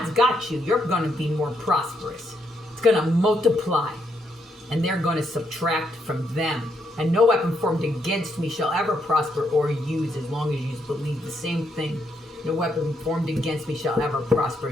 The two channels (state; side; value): normal; both; correlation 0.77